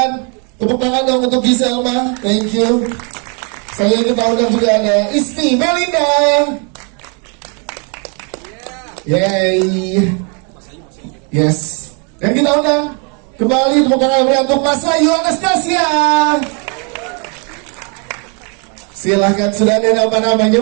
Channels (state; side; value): quieter; left; 36.9 dB